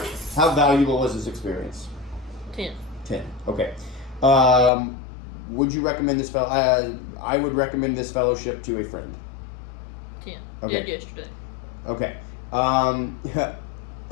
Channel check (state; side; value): drops out; right; at 4.7 s